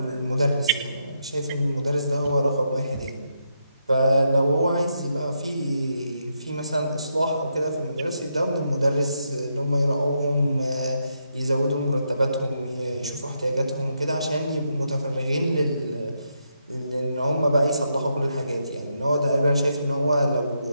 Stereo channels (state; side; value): inverted; both; correlation -0.80